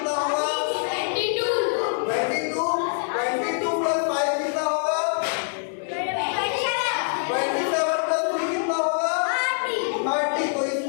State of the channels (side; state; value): right; silent; digital silence